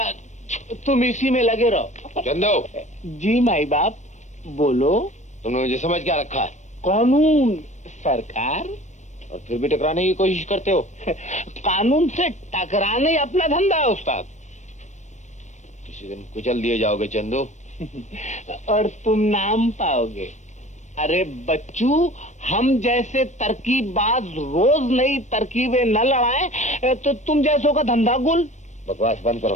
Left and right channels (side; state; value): right; late; 0.34 ms